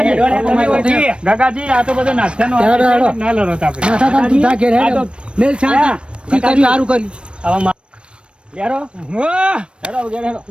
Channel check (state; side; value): late; left; 0.057 ms